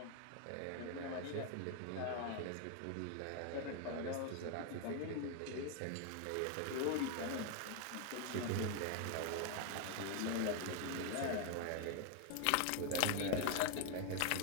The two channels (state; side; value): different; both; correlation 0.01